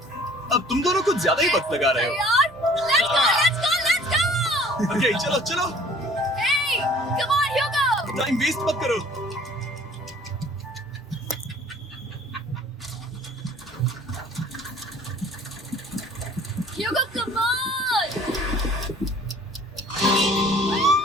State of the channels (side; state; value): both; normal; correlation 0.52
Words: अब तुम दोनों कुछ ज्यादा ही वक्त लगा रहे हो। तैयार? Let's go, let's go, let's go! Okay, चलो चलो, Hey, come on, Hugo! Time waste मत करो। Hugo, come on!